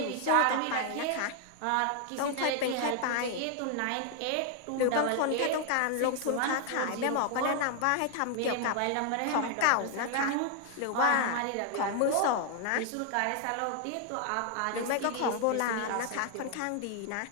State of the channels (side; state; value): both; different; correlation 0.00